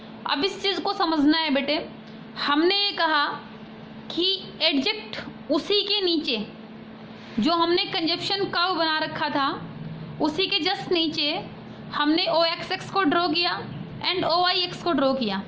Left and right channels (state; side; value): identical; both; correlation 1.00